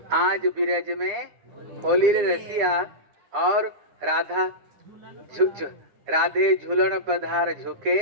आज बिरज में होली रे रसिया और राधा राधे झूलन पधार झुके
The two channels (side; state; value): left; late; 10 ms